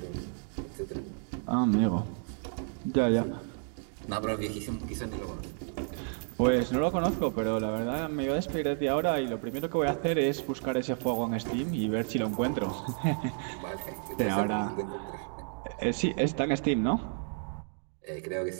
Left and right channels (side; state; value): left; silent; 57 dB below the other